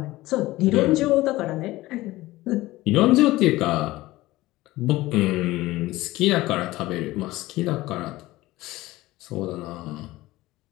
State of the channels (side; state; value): right; quieter; 18.2 dB